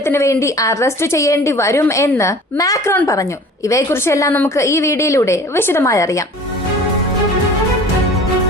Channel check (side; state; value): both; normal; correlation 0.44